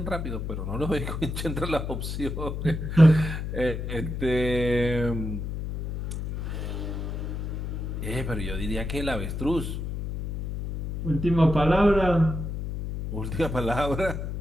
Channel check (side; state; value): left; noise; hum, 4 dB below the sound